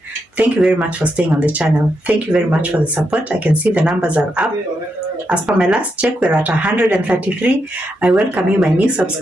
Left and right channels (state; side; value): normal; both; correlation 0.83